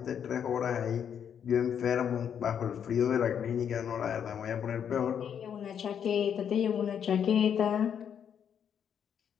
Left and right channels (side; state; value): right; quieter; 8.3 dB